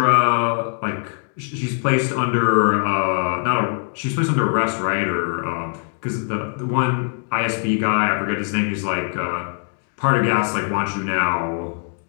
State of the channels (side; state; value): right; silent; 55 dB below the other